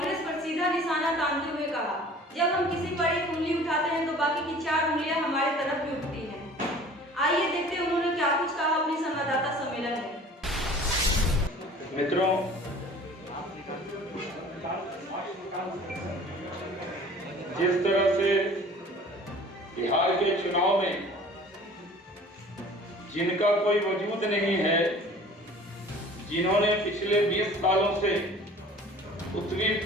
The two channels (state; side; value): normal; both; correlation 0.46